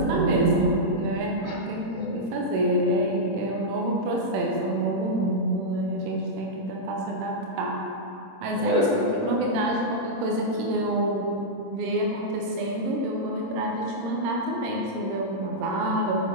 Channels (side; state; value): left; late; 26 ms